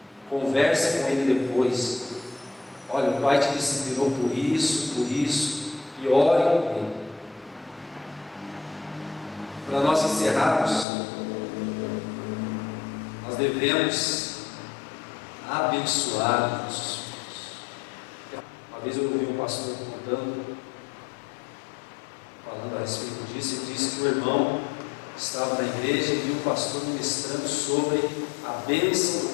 com ele. Converse com ele depois. Olha, o pai te disciplinou por isso, e ore com ele. Para nós encerrarmos, nós devemos abençoar os nossos filhos. Uma vez eu ouvi um pastor falando a respeito disso, e disse que o irmão estava na igreja e viu o pastor ministrando sobre a bênção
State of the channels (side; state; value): right; drops out; at 10.9 s